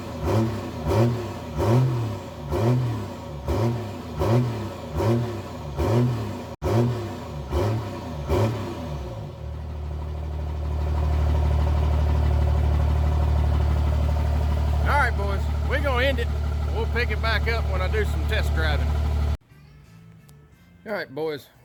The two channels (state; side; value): identical; both; correlation 1.00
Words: Alright boys, we're going to end it. We'll pick it back up when I do some test driving. Alright boys,